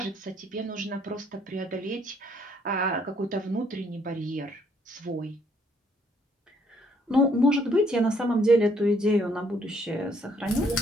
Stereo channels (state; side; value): normal; both; correlation 0.67